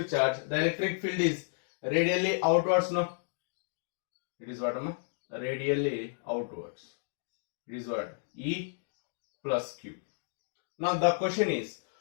electric field is radially outwards. No, it is what? Radially outwards. It is what? E plus Q. Now the question is,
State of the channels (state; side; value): silent; right; digital silence